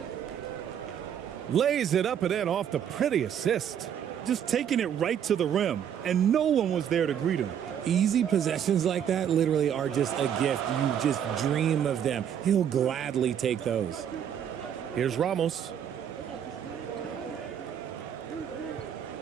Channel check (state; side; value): quieter; left; 9.0 dB